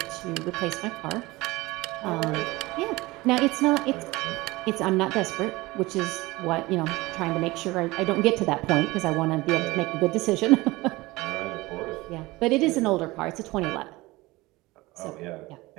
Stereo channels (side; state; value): left; quieter; 20.9 dB